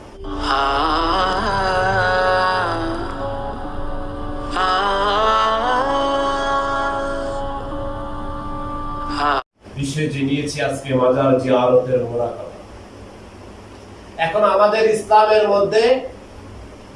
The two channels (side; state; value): both; identical; correlation 1.00